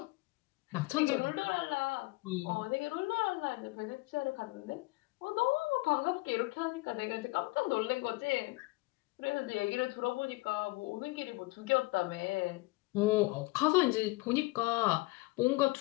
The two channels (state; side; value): quieter; right; 23.0 dB